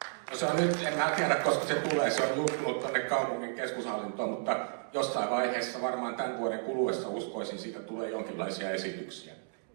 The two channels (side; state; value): left; silent; digital silence